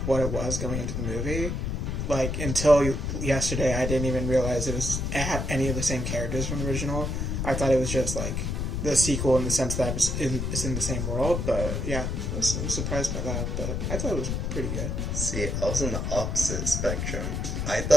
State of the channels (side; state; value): left; noise; rumble, 1 dB below the sound